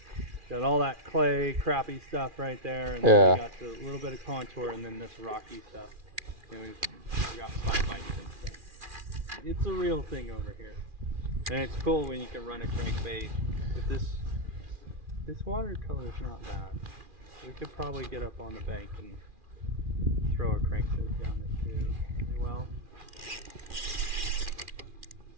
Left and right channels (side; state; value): left; late; 2.4 ms